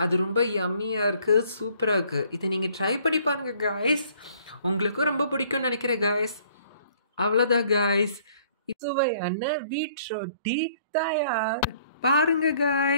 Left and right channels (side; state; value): both; inverted; correlation -0.60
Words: அது ரொம்ப யம்மியாக இருக்குது, சூப்பராக இருக்குது. இதை நீங்கள் ட்ரை பண்ணி பாருங்கள் காய்ஸ், உங்களுக்கும் ரொம்ப பிடிக்கும்னு நினைக்கிறேன் காய்ஸ். அவ்வளோதான் காய்ஸ், சுவையான வீட் ரொட்டி தயார். பாருங்க